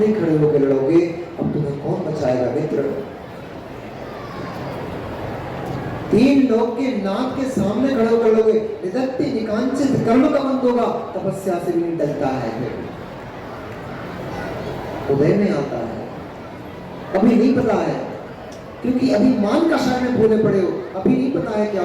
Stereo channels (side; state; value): both; identical; correlation 1.00